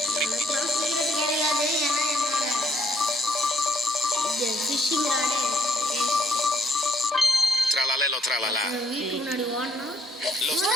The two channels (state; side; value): normal; both; correlation 0.67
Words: எனக்குலாம் சீக்கிரம் கிடையாது. ஏன்னா என்னோட இது ஃபிஷிங் ராடு Tralalelo, tralala. வீட்டுக்கு முன்னாடி ஓடனா Lo